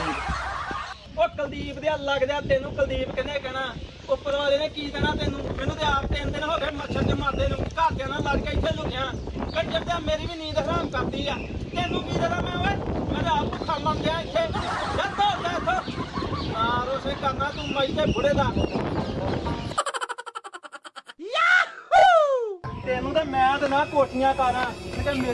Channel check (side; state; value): both; identical; correlation 1.00